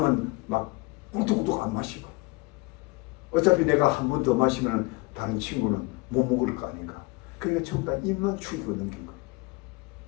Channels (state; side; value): quieter; right; 24.7 dB